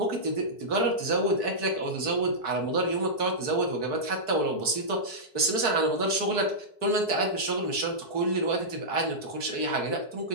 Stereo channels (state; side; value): late; right; 4.6 ms